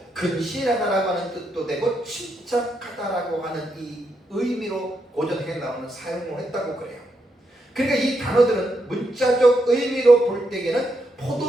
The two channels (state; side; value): normal; both; correlation 0.81